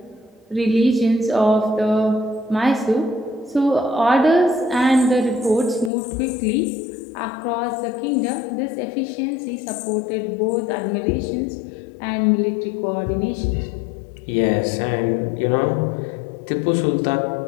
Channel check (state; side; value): drops out; right; at 5.9 s